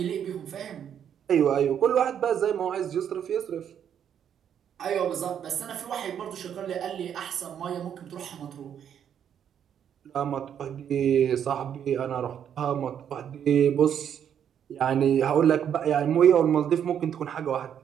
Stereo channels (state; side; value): quieter; left; 8.9 dB